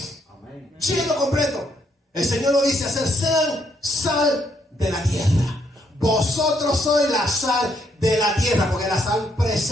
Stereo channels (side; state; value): both; normal; correlation 0.73